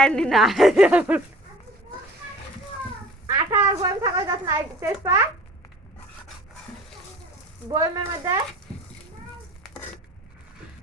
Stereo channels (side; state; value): both; normal; correlation 0.45